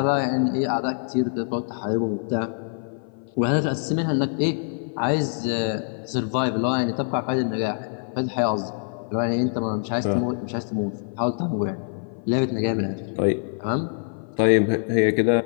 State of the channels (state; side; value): silent; right; 56 dB below the other